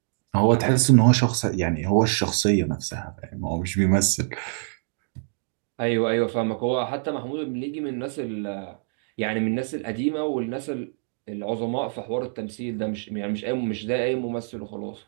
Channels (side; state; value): left; silent; digital silence